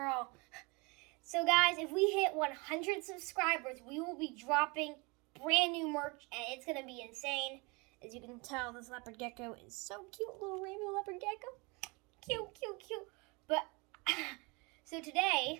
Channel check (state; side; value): quieter; left; 28.5 dB